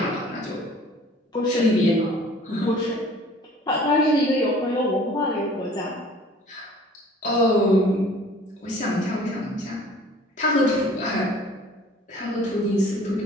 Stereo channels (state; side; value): normal; both; correlation 0.50